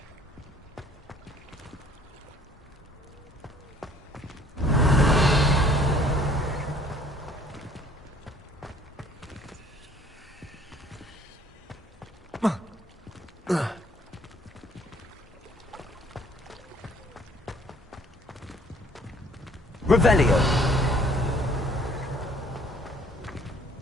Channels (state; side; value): normal; both; correlation 0.58